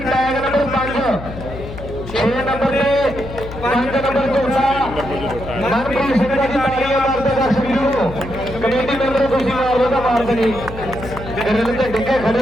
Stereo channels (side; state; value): left; noise; hum, 11 dB below the sound